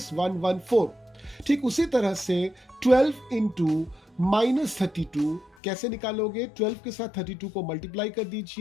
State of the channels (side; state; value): right; drops out; at 5.6 s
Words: ठीक उसी तरह से 12 इंटू -32 कैसे निकालोगे? 12 के साथ 32 को मल्टीप्लाई कर